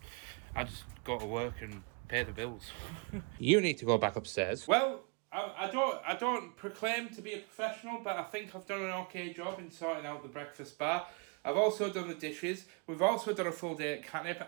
go to work and pay the bills. You need to go back upstairs. Well, I don't proclaim to be a professional, but I think I've done an okay job in sorting out the breakfast bar. I've also done the dishes. We've also done a full day at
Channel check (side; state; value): left; quieter; 33.9 dB